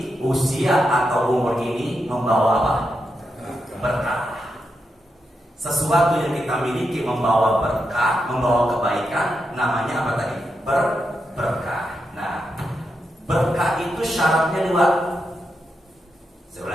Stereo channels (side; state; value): both; normal; correlation 0.85